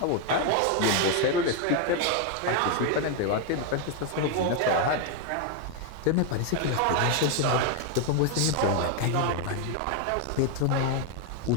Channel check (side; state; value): both; different; correlation 0.01